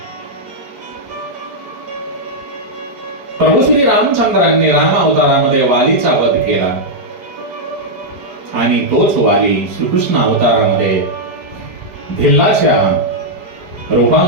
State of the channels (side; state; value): left; late; 4.9 ms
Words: प्रभू श्री रामचंद्रांनी राम अवतारामध्ये वालीचा वध केला आणि तोच वाली श्रीकृष्ण अवतारामध्ये भिल्लाच्या